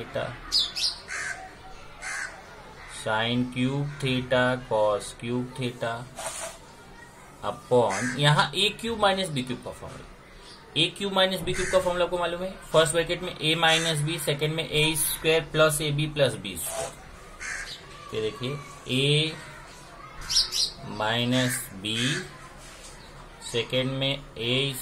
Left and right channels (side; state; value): both; identical; correlation 1.00